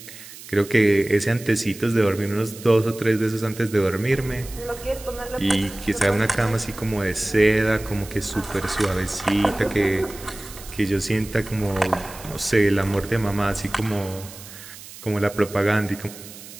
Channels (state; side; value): noise; right; hiss, 16 dB below the sound